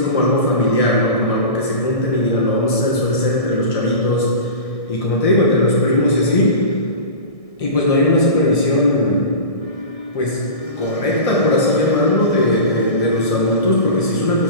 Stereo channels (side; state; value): right; late; 1.6 ms